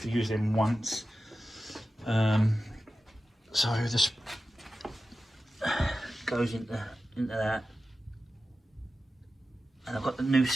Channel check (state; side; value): normal; both; correlation 0.93